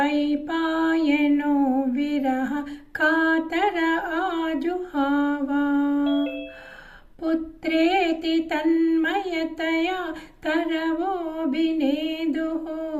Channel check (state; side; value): identical; both; correlation 1.00